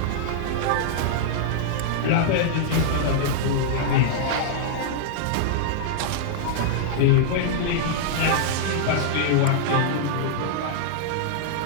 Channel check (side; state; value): both; different; correlation -0.01